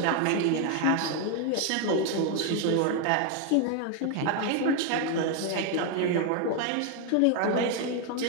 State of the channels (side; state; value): both; different; correlation 0.01